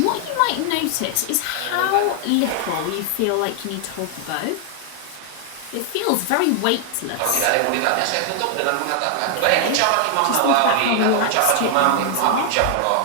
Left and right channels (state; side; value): different; both; correlation 0.00